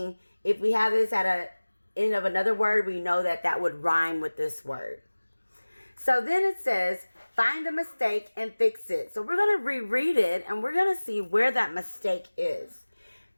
if we have this at a end of another word, we know that would rhyme with this word. So then it says, find a mistake and fix it. So we're going to reread it and we're going to see where that mistake is.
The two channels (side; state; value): both; inverted; correlation -1.00